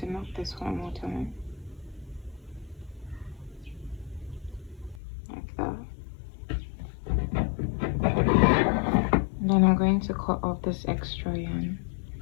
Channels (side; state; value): right; drops out; at 5.0 s